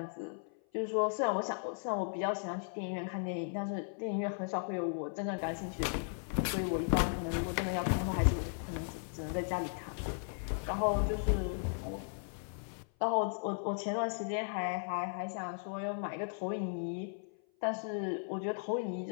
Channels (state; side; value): silent; right; 54 dB below the other